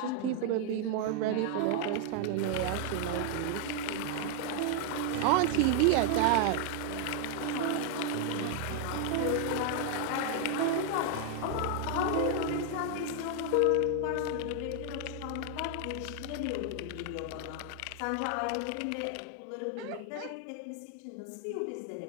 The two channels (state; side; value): different; both; correlation 0.00